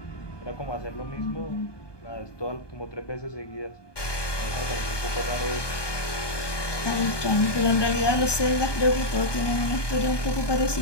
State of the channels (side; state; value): right; late; 1.2 ms